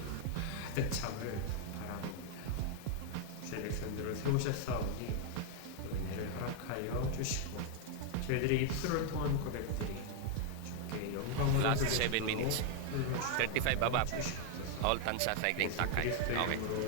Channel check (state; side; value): different; both; correlation 0.00